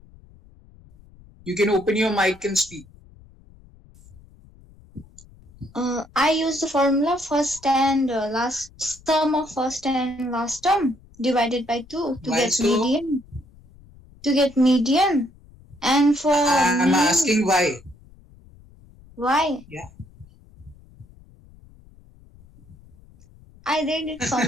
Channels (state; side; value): noise; left; rumble, 25 dB below the sound